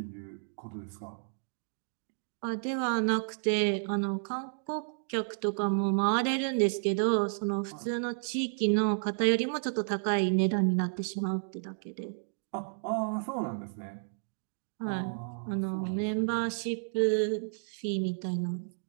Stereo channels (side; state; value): left; silent; digital silence